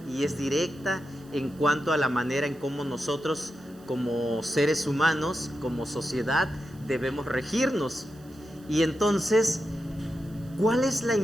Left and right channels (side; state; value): right; noise; hiss, 27 dB below the sound